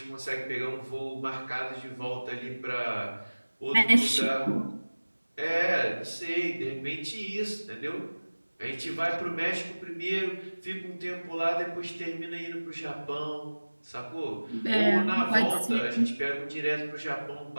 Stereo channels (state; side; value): inverted; both; correlation -1.00